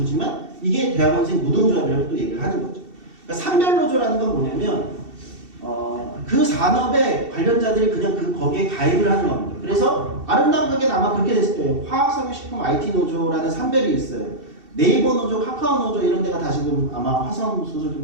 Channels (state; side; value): late; left; 2.7 ms